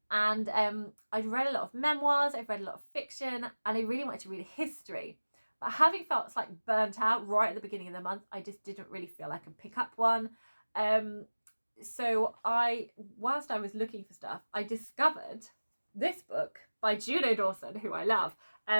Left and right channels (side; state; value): both; inverted; correlation -1.00